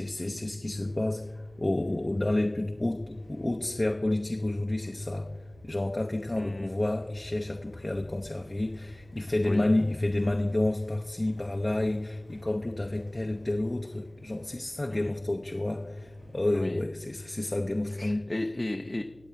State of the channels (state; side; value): noise; right; hum, 27 dB below the sound